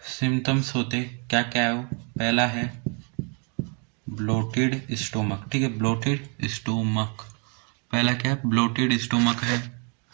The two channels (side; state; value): left; quieter; 36.9 dB